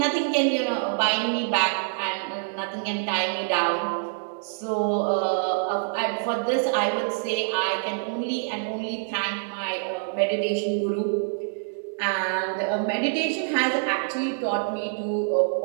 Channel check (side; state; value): left; silent; digital silence